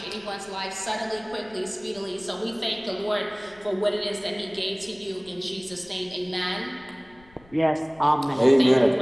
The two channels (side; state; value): left; noise; rumble, 27 dB below the sound